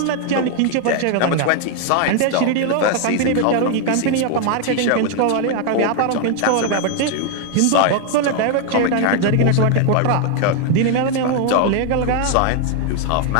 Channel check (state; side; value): different; both; correlation 0.01